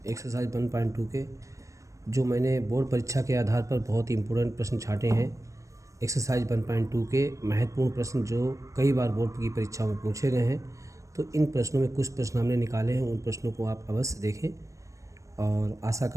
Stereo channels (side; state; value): left; late; 0.15 ms